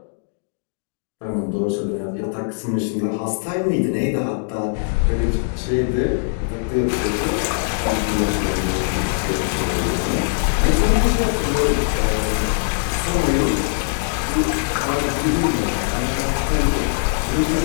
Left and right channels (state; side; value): silent; right; digital silence